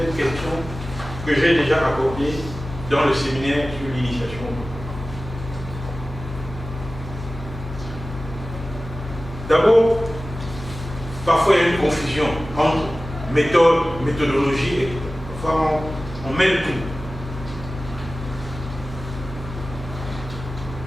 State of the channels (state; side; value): normal; both; correlation 0.96